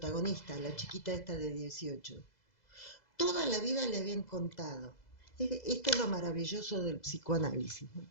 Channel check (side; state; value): right; late; 2.0 ms